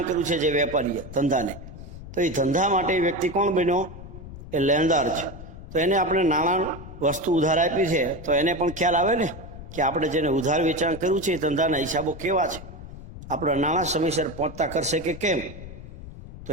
કર્યું છે, જે વેપારીએ ધંધાને, તો એ ધંધા માટે વ્યક્તિ કોણ બન્યો? એ લેણદાર છે. તો એને આપણે નાણાં વસ્તુ ઉધાર આપી છે, તો એને પણ ખ્યાલ આવે ને કે આપણે જેને ઉધાર વેચાણ કર્યું છે એ ધંધાના હિસાબો કેવા છે, આપણા નાણાં સમયસર પહોંચતા કરશે કે કેમ. તો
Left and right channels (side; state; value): left; noise; rumble, 14 dB below the sound